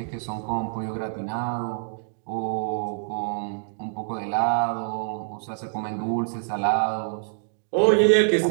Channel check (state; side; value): silent; left; digital silence